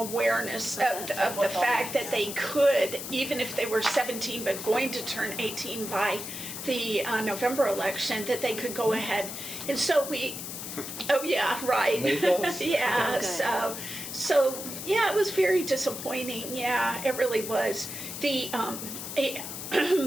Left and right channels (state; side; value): noise; left; hiss, 8 dB below the sound